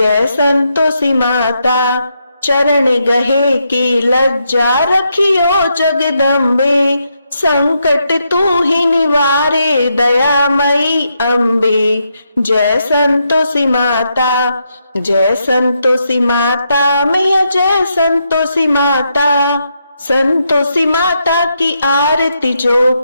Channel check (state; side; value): inverted; both; correlation -0.81